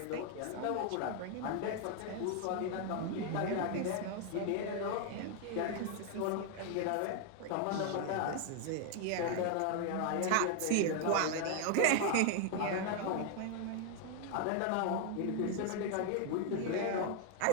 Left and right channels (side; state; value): both; different; correlation 0.00